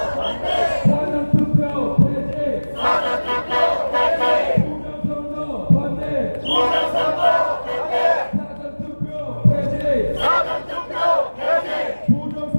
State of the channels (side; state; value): both; inverted; correlation -1.00